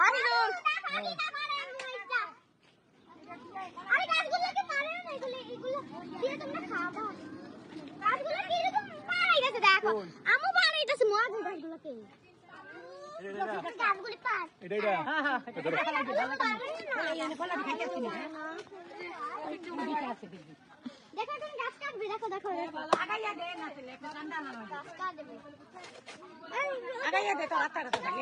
আরে গাছগুলোকে মারো না এগুলো দিয়ে তোমরা খাওয়া গাছগুলো কি এরকম মারাই গেছে দেখো আমু মারাইতেছে মজা গাছগুলোকে গাছগুলি পার এটা এটা হ্যাঁ হ্যাঁ দেখো তুমি গাছ কাটবে দেখো দেখো আগাইয়া দে না ছেলে একটু ঠান্ডা না গাছ কাটবে আগাইয়া দে তো রাস্তা রাস্তা লাগে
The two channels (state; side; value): identical; both; correlation 1.00